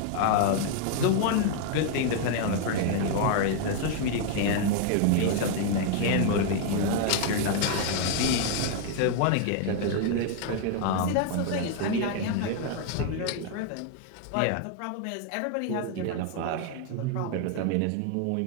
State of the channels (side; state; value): both; different; correlation 0.00